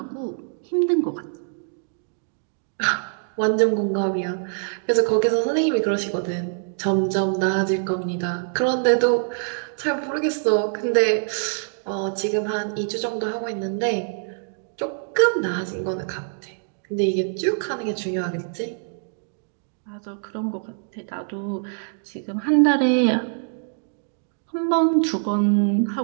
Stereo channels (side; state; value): left; silent; digital silence